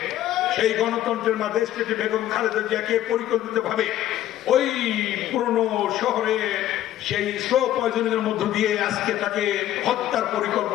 সেই গণতন্ত্রের মা দেশটিতে বেগম খালেদা জিয়াকে পরিকল্পিতভাবে ওই পুরনো শহরে সেই স্লো পয়জনের মধ্য দিয়ে আজকে তাকে হত্যার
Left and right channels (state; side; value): quieter; right; 12.8 dB